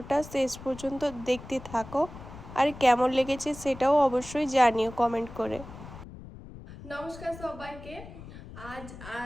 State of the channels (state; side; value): noise; left; rumble, 15 dB below the sound